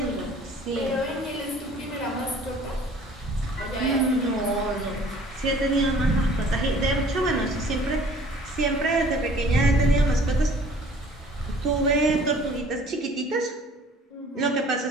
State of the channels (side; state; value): both; normal; correlation 0.52